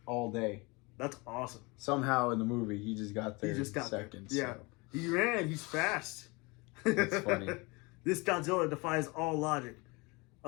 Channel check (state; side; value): quieter; right; 26.4 dB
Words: all day. That's awesome. Somehow in the movie he just got there in seconds. Yeah. So. He ran, he's fast. It's funny. This Godzilla defies all logic.